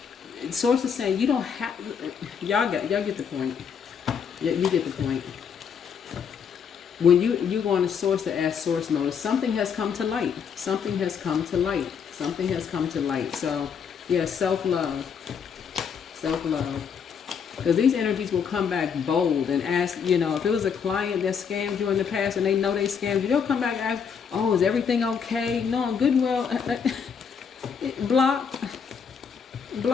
Source is saying you don't have. Y'all get the point. You get the point. When you go on to source to ask source mode, something has come to light. Something has come to light. Something has come to light. So yeah, self-love. Self-love. Because these energies will come back bold and ask, if it was a client that scammed you in the past and they know they scammed you, they'll come back and ask, oh, is everything okay? No, I'm good and well. Blocked.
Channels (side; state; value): right; quieter; 6.9 dB